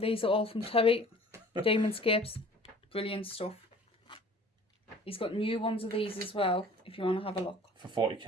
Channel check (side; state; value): both; normal; correlation 0.48